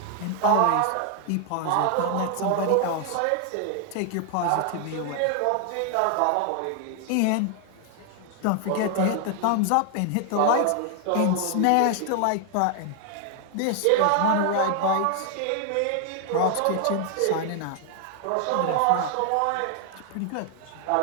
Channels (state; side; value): different; both; correlation 0.00